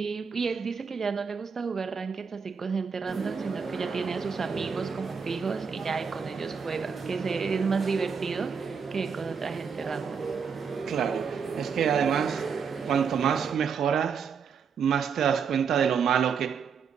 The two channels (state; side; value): quieter; left; 6.2 dB